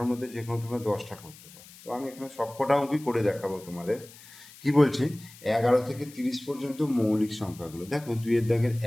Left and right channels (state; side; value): noise; left; hiss, 20 dB below the sound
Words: মধ্যে যে কোনো তোমরা 10টা করতে পারো। তো আমি এখানে সবকটা অঙ্কই করে দেখাবো তোমাদের। কি বলছি, 11 থেকে 30 পর্যন্ত মৌলিক সংখ্যাগুলো দেখো। 2-এর দাগের